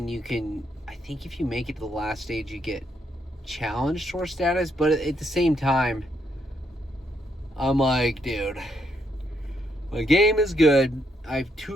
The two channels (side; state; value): both; normal; correlation 0.76